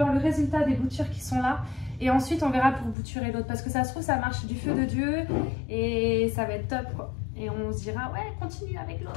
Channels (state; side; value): drops out; right; at 3.0 s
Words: le résultat des boutures qui sont là. Et ensuite, on verra pour bouturer l'autre. Parce que ça se trouve, ça marche du feu de Dieu. Et ça va être top, quoi. Et on se dira, ouais, continue avec